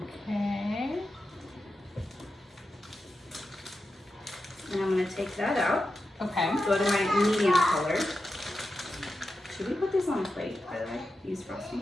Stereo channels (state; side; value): normal; both; correlation 0.90